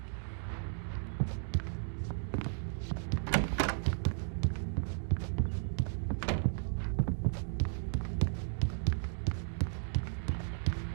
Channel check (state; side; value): silent; left; digital silence